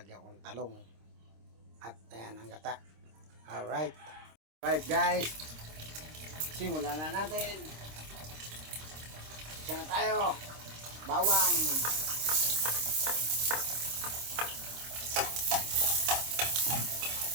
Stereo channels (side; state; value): left; late; 26 ms